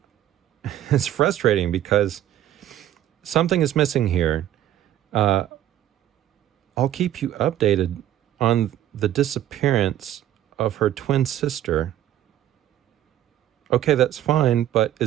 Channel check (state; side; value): quieter; left; 12.2 dB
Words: it's frustrating because something is missing here. I'll keep you updated on the disappearance of her twin sister. Okay, that's fine, but